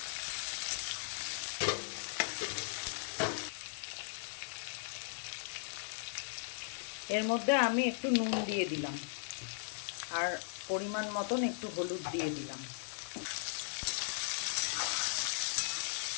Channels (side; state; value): right; silent; 53 dB below the other